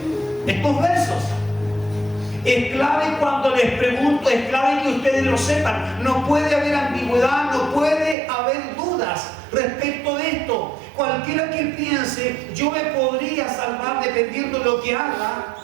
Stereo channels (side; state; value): left; drops out; at 8.2 s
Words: estos versos. Es clave cuando les pregunto, es clave que ustedes lo sepan. No puede haber ambigüedad, no puede haber dudas respecto de esto. Cualquiera que piense, yo me podría salvar dependiendo de lo que haga,